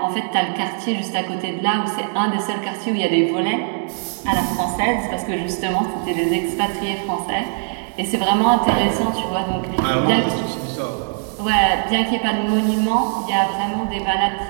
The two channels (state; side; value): silent; left; 58 dB below the other